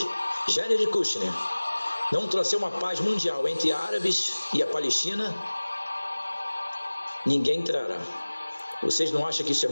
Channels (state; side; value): inverted; both; correlation -1.00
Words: Jared Kushner não trouxer uma paz mundial entre árabes e a Palestina, ninguém entrará. Vocês não acham que isso é